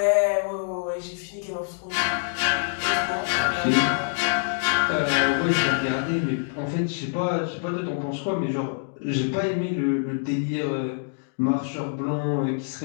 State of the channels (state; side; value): silent; right; digital silence